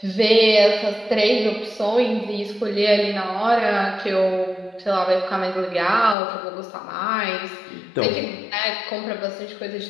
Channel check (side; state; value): right; drops out; at 6.2 s